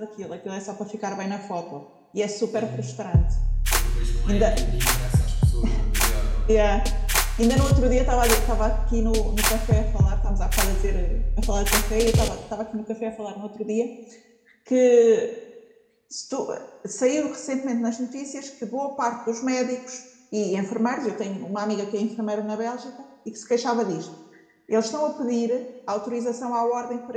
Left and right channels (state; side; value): identical; both; correlation 1.00